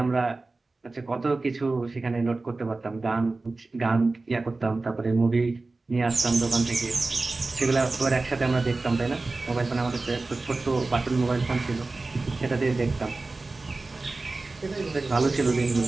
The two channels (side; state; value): left; quieter; 3.4 dB